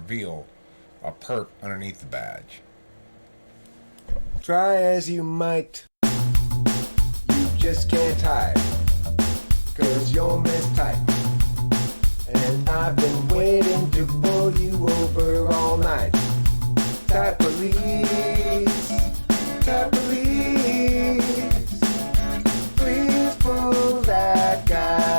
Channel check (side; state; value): both; inverted; correlation -1.00